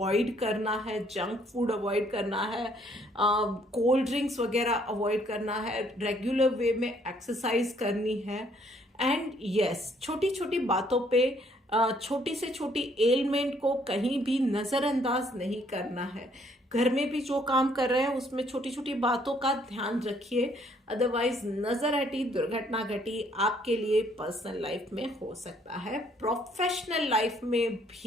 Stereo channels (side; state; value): both; normal; correlation 0.65